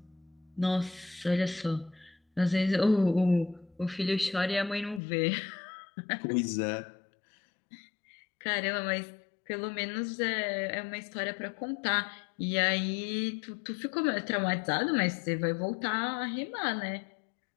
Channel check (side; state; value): right; drops out; at 5.0 s